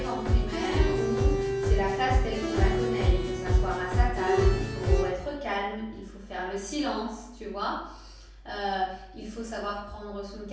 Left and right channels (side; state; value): both; identical; correlation 1.00